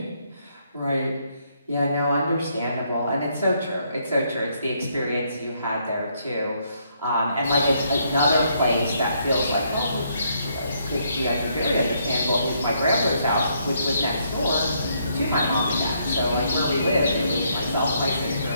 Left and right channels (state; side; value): inverted; both; correlation -0.72